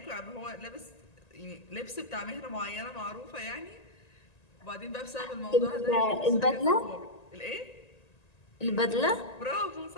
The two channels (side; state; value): right; late; 1.9 ms